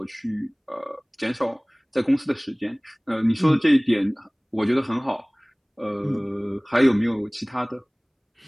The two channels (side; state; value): both; identical; correlation 1.00